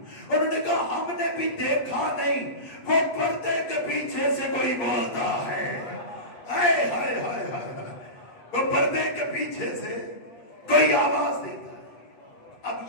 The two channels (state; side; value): late; right; 8.5 ms